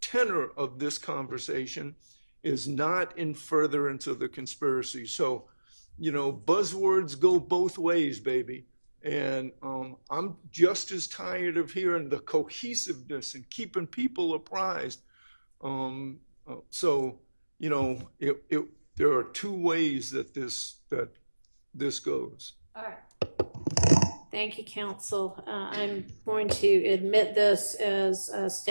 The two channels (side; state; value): both; inverted; correlation -1.00